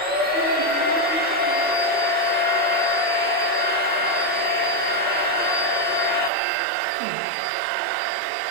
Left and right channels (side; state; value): left; drops out; at 6.3 s